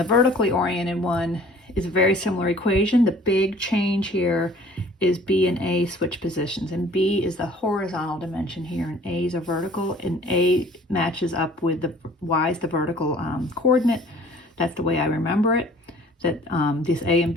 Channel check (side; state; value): both; normal; correlation 0.52